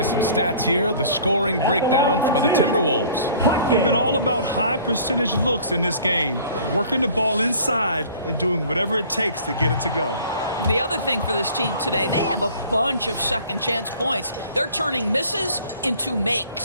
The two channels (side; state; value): both; inverted; correlation -0.50